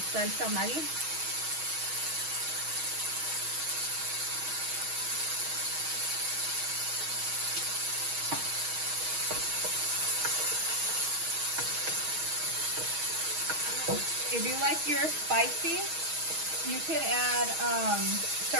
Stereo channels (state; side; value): late; left; 6.3 ms